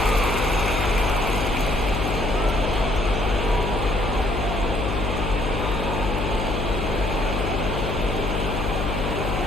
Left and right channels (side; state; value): left; noise; hum, 3 dB below the sound